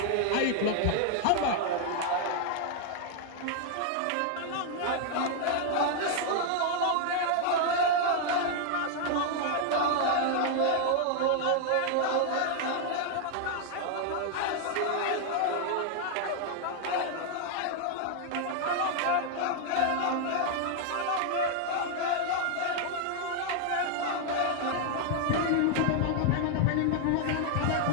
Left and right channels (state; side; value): different; both; correlation 0.00